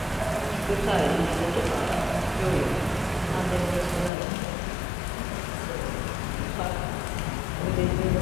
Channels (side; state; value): right; drops out; at 4.1 s